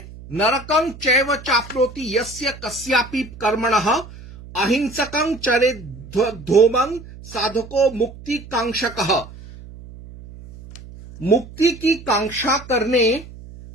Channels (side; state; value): right; noise; hum, 17 dB below the sound